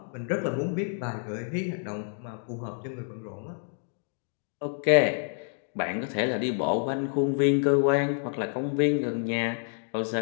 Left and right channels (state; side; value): silent; right; 58 dB below the other